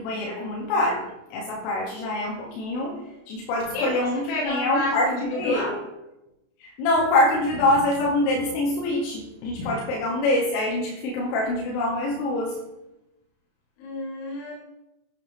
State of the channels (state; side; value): late; right; 32 ms